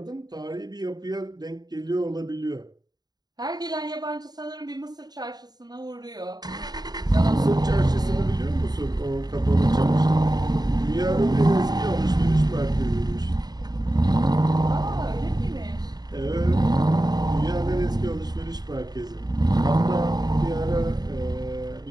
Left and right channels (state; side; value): late; left; 0.19 ms